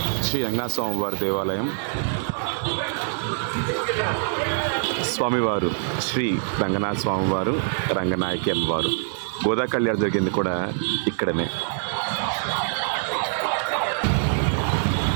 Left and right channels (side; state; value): left; silent; digital silence